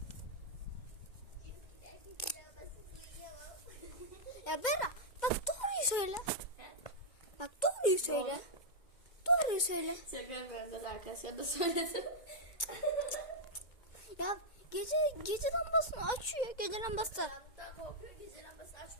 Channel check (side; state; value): right; late; 2.1 ms